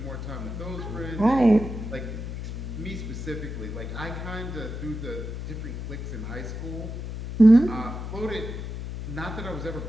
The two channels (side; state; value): left; noise; hum, 6 dB below the sound